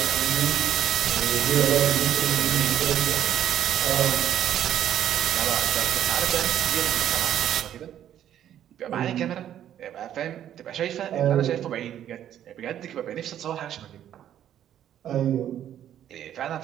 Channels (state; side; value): quieter; left; 10.8 dB